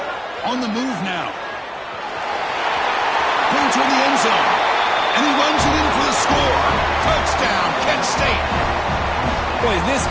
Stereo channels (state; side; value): identical; both; correlation 1.00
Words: On the move now. Going toward the end zone. And he runs it in for the score. Touchdown, Kent State. Boy, this